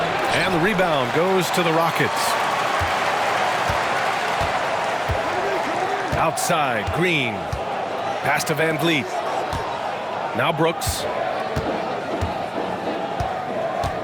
And the rebound goes to the Rockets. Outside, Green. Pass to Van Vliet. Now Brooks.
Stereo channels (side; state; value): both; identical; correlation 1.00